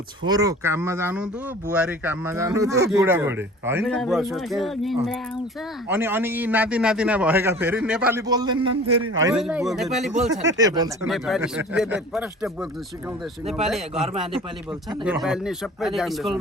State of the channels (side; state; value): both; normal; correlation 0.43